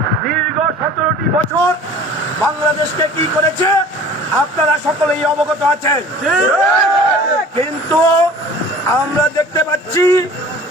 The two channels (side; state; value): both; normal; correlation 0.45